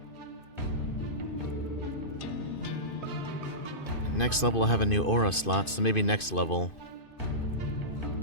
Next level I'll have a new aura slot, so maybe next level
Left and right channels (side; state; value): right; late; 2.5 ms